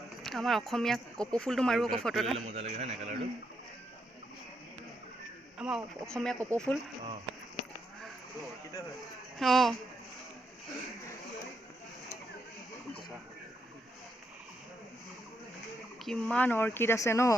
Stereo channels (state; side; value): normal; both; correlation 0.80